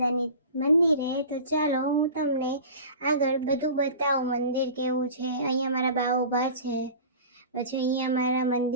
મંદિરે. તો ચાલો હું તમને આગળ બધું બતાવું મંદિર કેવું છે. અહીંયા મારા બા ઊભા છે, પછી અહીંયા મારા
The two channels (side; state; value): both; inverted; correlation -0.37